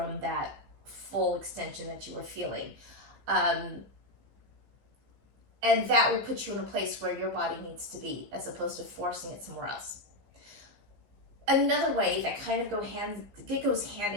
that full extension that you were feeling. And that will put you in a place where your body needs to be, as opposed to forcing it somewhere else. Another way that kind of goes hand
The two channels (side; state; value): left; late; 15 ms